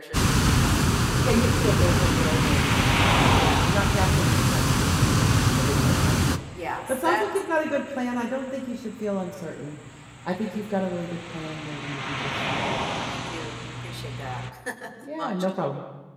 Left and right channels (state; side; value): identical; both; correlation 1.00